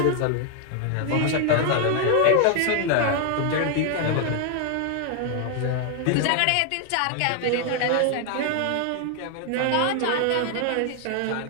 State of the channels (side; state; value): both; different; correlation 0.00